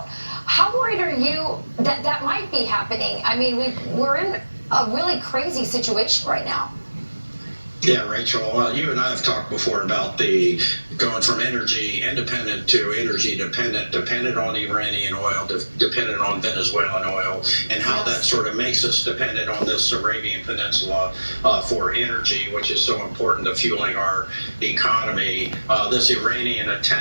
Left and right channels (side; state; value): both; inverted; correlation -1.00